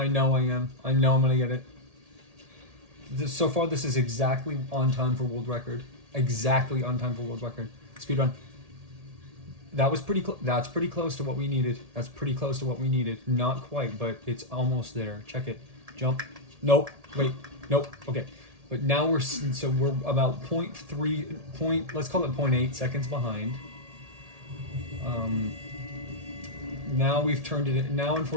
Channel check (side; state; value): left; late; 1.8 ms